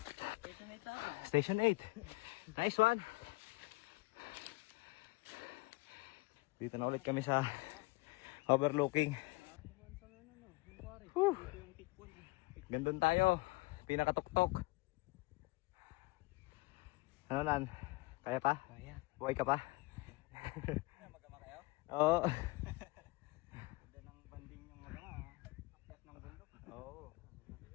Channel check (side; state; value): right; quieter; 23.7 dB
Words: Station 8. Nice one. Dito na ulit kami sa overlooking. Whew. Gandun tayo. Pinakatuktok. Ano nan? Kaya pa? Kaya. Buhay ka pa? Magkama kayo? Oo. Ganda ng banding yung magkama. Akyat ng bundok. Oo.